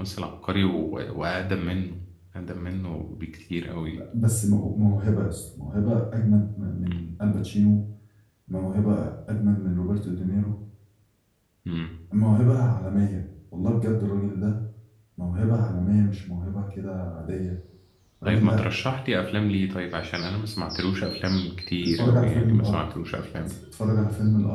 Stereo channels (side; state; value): both; identical; correlation 1.00